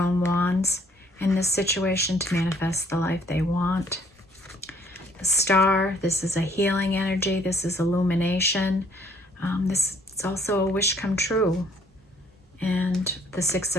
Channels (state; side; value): normal; both; correlation 0.63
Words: wands in this situation to manifest the life they want. The Star, this is a healing energy. This is illumination. This is also a wish come true. And the Six